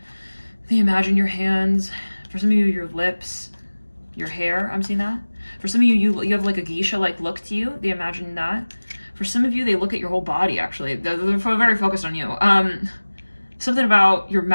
They imagine your hands. For some of you, your lips, your hair. I'm seeing that. For some of you, you have like a geisha-like look to you. They imagine that. For some of you, they look at your whole body, actually. They're very focused on you. Something about your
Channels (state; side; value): inverted; both; correlation -1.00